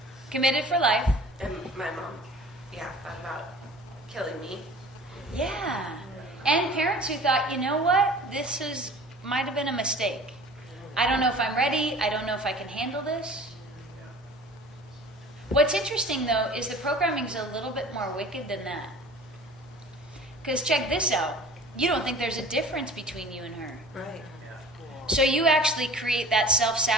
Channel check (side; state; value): both; normal; correlation 0.43